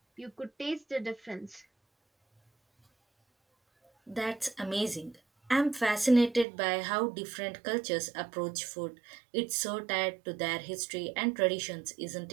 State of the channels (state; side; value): drops out; left; at 6.5 s